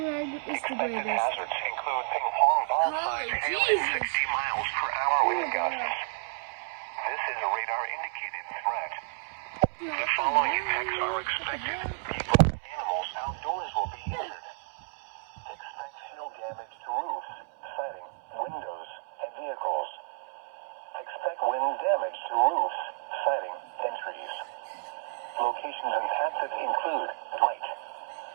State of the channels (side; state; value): left; silent; 57 dB below the other